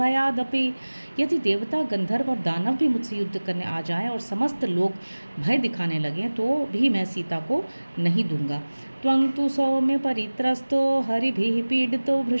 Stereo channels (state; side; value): inverted; both; correlation -1.00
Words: यदि देवता, गंधर्व और दानव भी मुझसे युद्ध करने आ जाएं और समस्त लोग भय दिखाने लगें तो भी मैं सीता को नहीं दूंगा। त्वं तु सौम्य परित्रस्तो हरिभिः पीडितो